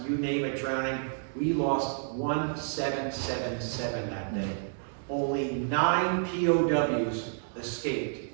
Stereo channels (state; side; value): silent; left; digital silence